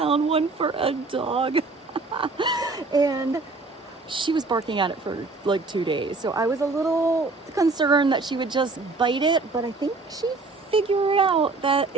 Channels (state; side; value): quieter; left; 3.7 dB